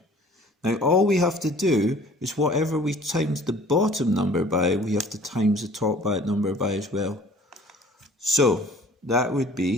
Now all we have to do is whatever we times the bottom number by, we have to times the top number by as well. So that would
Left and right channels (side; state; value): both; normal; correlation 0.51